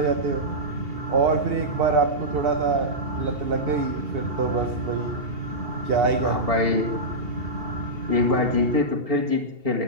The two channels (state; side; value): late; left; 2.7 ms